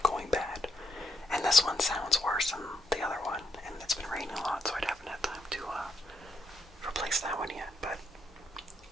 going bad. And this one sounds worse than the other one. And it's been raining a lot, so I haven't had time to replace that one yet. But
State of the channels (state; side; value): normal; both; correlation 0.75